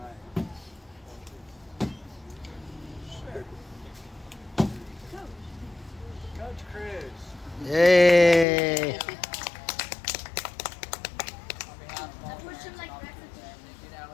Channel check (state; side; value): drops out; right; at 8.5 s